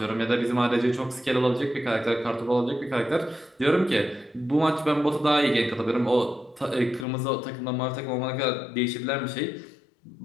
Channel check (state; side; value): drops out; right; at 7.1 s